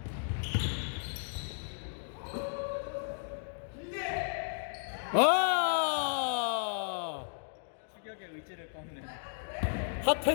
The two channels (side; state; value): right; silent; digital silence